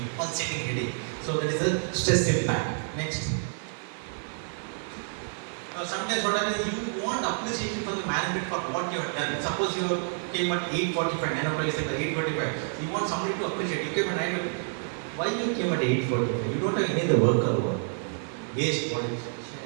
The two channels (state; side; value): silent; left; 59 dB below the other